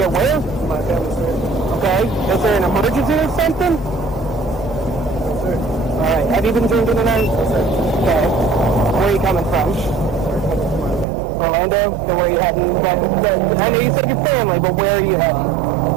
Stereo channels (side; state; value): left; drops out; at 11.1 s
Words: where? My family's here. Okay, is there an emergency or something? Yes, sir. Alright, have you been drinking tonight? Yes, sir. Okay, where are you coming from? Orlando? So where are you heading? I know you said your family, but where are you heading?